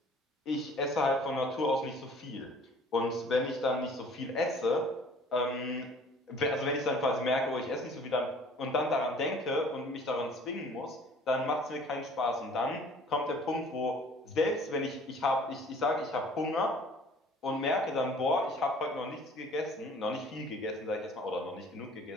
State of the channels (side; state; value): both; normal; correlation 0.51